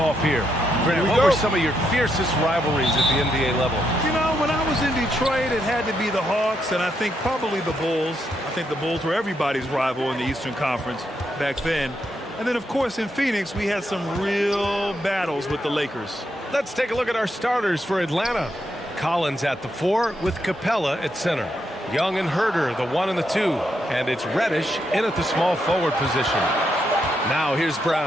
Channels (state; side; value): normal; both; correlation 0.80